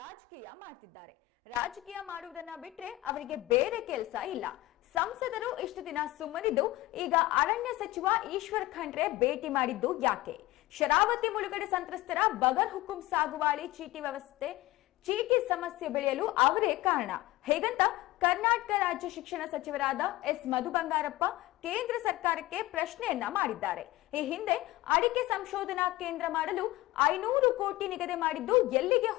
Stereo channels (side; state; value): right; quieter; 18.1 dB